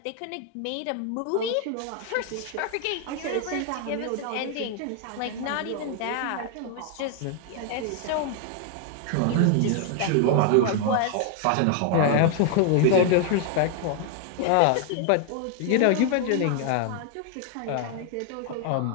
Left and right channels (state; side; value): different; both; correlation 0.00